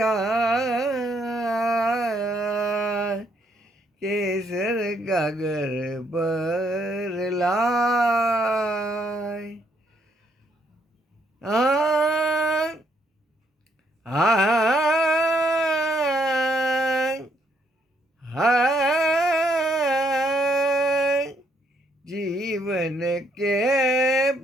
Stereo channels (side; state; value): both; normal; correlation 0.72